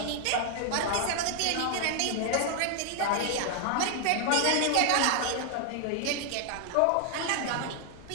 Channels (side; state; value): both; different; correlation 0.00